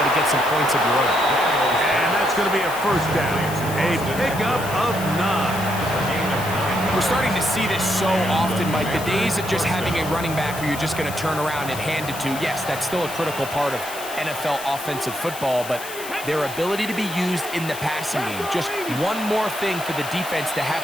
to get some points of your own. And that's going to be a 1st down. A pickup of 9. We're starting to see this so often, Mike. The days of just having a running back who you're just going to turn around and hand it to, yes, that's still a critical part of NFL offensive football, but their ability to be used in the passing game, just one more thing for the defense to have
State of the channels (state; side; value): noise; left; hiss, 12 dB below the sound